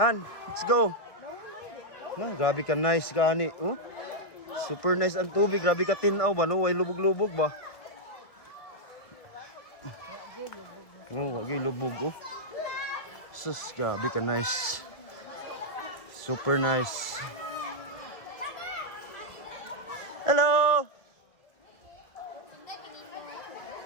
let's go. Ma, grabe ka nice ka ani, oh. Super nice ang tubig, grabe ka tinaw ba, no? Way lubog-lubog ba? Oh, wagi lubog, oh. Sus, grabe ka nice. Super nice. Hello!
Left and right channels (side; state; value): right; late; 1.7 ms